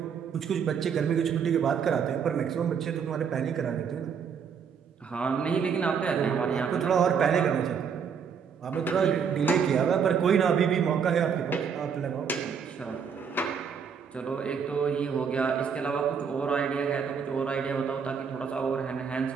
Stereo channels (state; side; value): quieter; left; 6.8 dB